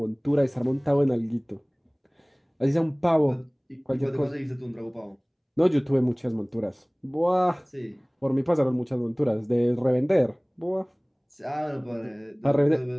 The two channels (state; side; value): identical; both; correlation 1.00